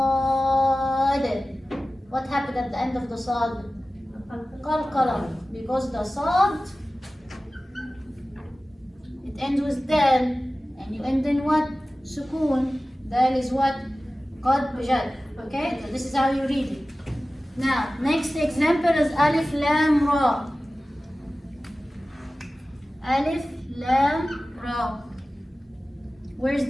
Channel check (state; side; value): normal; both; correlation 0.96